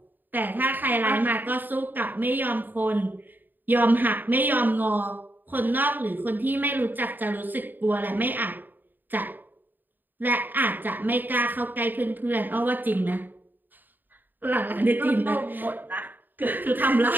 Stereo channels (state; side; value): late; left; 0.090 ms